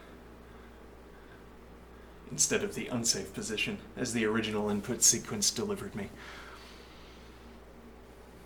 instead of the unsafe position as the original input sequence delivered me.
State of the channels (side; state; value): both; identical; correlation 1.00